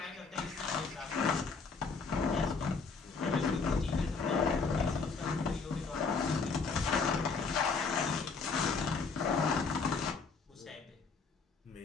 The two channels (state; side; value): quieter; right; 4.8 dB